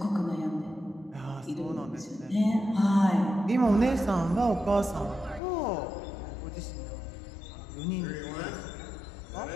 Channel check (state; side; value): drops out; right; at 5.4 s